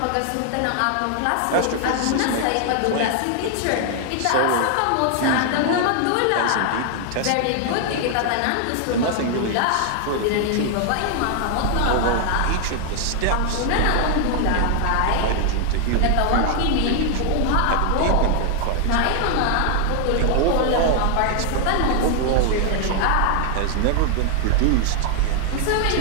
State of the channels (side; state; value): both; different; correlation 0.00